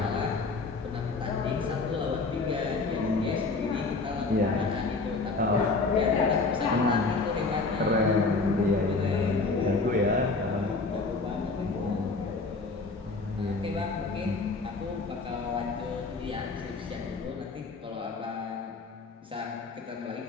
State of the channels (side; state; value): right; quieter; 3.9 dB